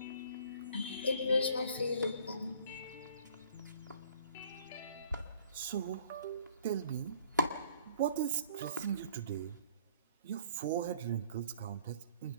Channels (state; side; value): inverted; both; correlation -0.55